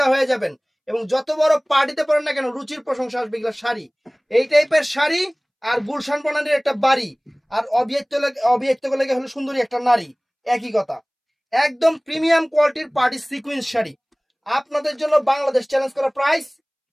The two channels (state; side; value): identical; both; correlation 1.00